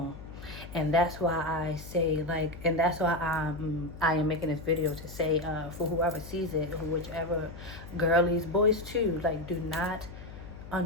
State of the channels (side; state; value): left; noise; hum, 14 dB below the sound